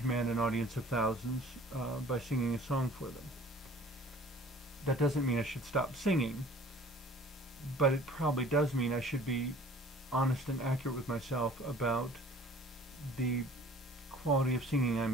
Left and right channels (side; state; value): both; normal; correlation 0.49